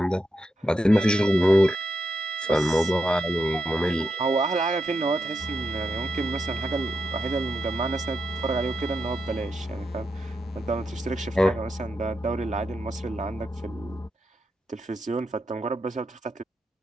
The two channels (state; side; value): normal; both; correlation 0.84